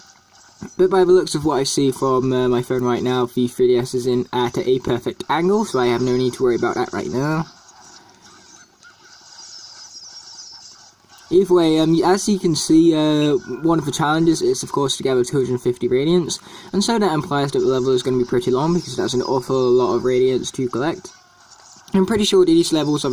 But by the looks of what I see from my phone right now, the 3DS is in at a perfect angle, so I have no need to worry about that right now. Either way, as you can see, one of the challenges is, of course, to gather 250 radiants, and so that implies that the level is going to be pretty long, because that's an awful lot of radiants to collect. I'm pretty sure these levels are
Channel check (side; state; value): both; identical; correlation 1.00